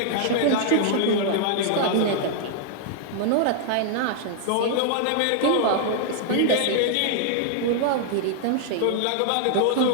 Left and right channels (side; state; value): both; different; correlation 0.00